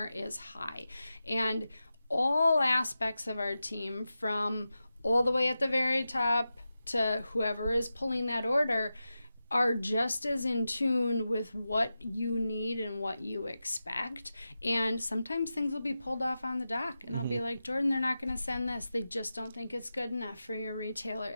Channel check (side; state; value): both; inverted; correlation -0.92